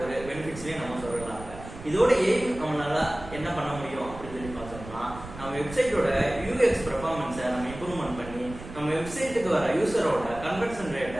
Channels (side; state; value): right; noise; rumble, 14 dB below the sound